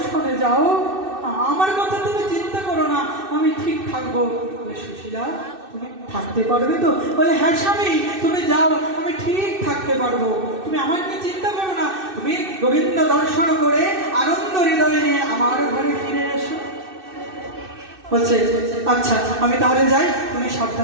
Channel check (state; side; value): late; left; 2.6 ms